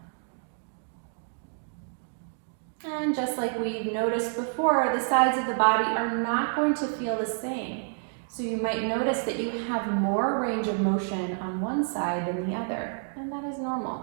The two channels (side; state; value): left; silent; 59 dB below the other